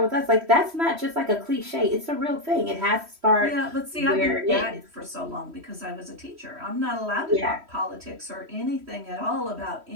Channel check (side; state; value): left; late; 3.1 ms